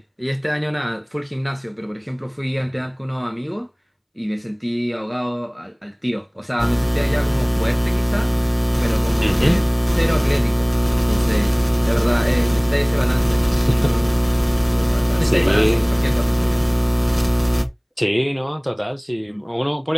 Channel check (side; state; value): both; identical; correlation 1.00